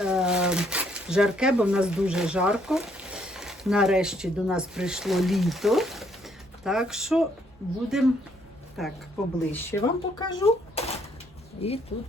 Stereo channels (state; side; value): normal; both; correlation 0.68